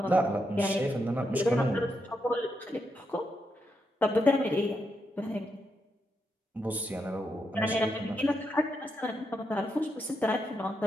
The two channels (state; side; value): normal; both; correlation 0.82